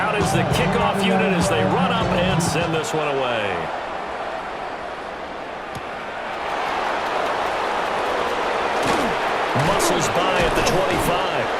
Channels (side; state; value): both; identical; correlation 1.00